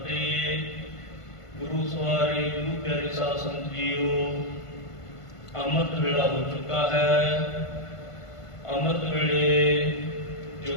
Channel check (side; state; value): right; late; 1.5 ms